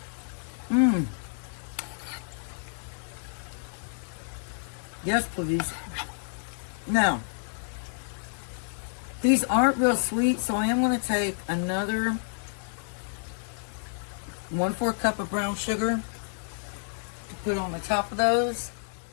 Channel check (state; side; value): silent; right; 56 dB below the other